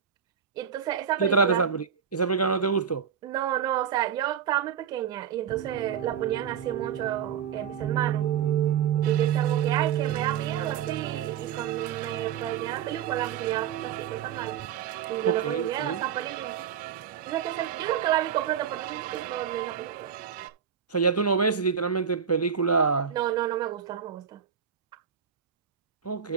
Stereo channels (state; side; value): quieter; left; 7.9 dB